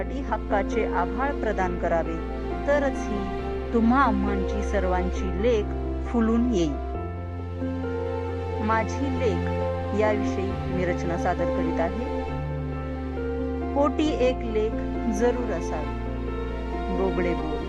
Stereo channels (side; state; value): both; identical; correlation 1.00